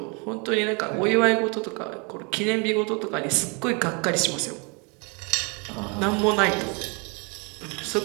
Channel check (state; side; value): quieter; left; 32.5 dB